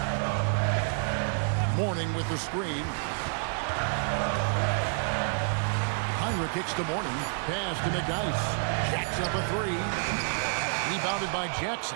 Mourning with the screen. Heinrich kicks to Mourning. Pass to McDice. Jacks up a three. Rebounded by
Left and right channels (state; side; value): silent; left; 59 dB below the other